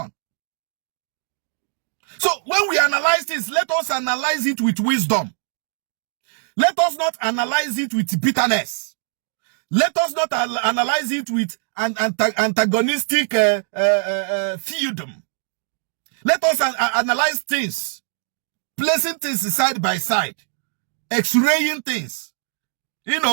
So when we analyze this, let us analyze it with wisdom. Let us not analyze it with bitterness. Let us not analyze it with an antagonistic feudum. Let us analyze things, placing things side by side, x-raying things, you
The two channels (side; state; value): left; silent; digital silence